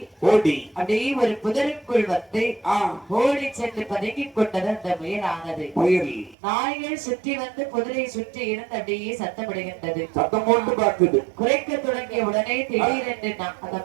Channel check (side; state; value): left; drops out; at 6.4 s